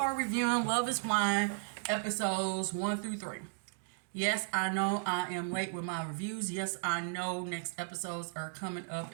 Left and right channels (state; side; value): silent; left; digital silence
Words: reviewing Love Is Blind episodes 1 through 3. Yes, I know I am late with my reviews. Yes, I know next episodes are coming